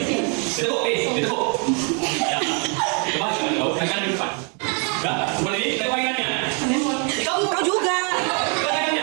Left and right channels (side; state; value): left; quieter; 37.0 dB